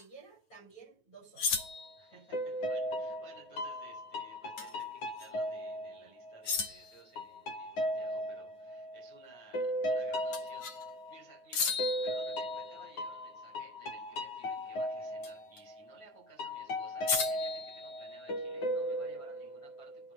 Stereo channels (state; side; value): late; right; 9.3 ms